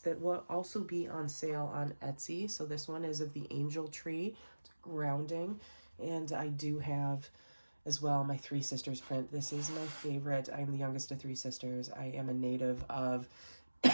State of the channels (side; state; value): both; inverted; correlation -1.00